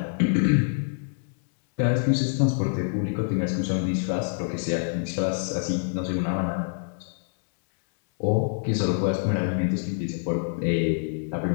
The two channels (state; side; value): silent; right; 61 dB below the other